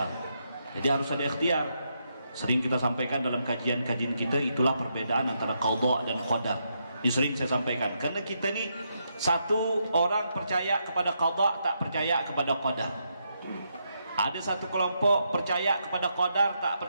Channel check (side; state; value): both; inverted; correlation -0.80